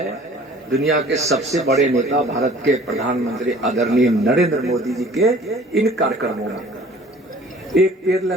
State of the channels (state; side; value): normal; both; correlation 0.49